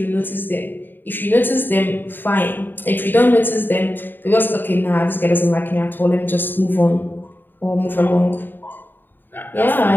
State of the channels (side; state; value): right; late; 0.093 ms